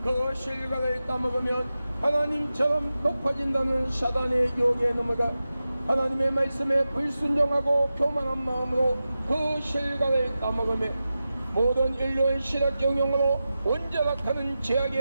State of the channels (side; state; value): both; inverted; correlation -0.93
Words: 그 실과를 따먹으면 하나님처럼 높아진다는 사단의 유혹에 넘어가 하나님의 말씀에 불순종하고 교만한 마음으로 그 실과를 따먹으며 모든 인류의 실학 경영으로 원자락하는